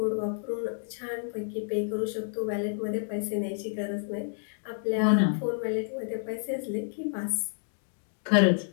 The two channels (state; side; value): silent; right; digital silence